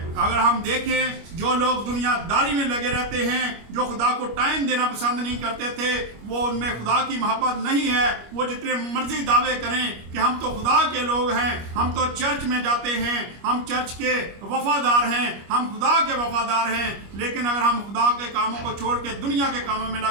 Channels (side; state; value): left; late; 25 ms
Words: अगर हम देखें जो लोग दुनियादारी में लगे रहते हैं, जो खुदा को टाइम देना पसंद नहीं करते थे, वो उनमें खुदा की मोहब्बत नहीं है। वो जितने मर्जी दावे करें कि हम तो खुदा के लोग हैं, हम तो चर्च में जाते हैं, हम चर्च के वफादार हैं, हम खुदा के वफादार हैं, लेकिन अगर हम खुदा के कामों को छोड़ के दुनिया के कामों में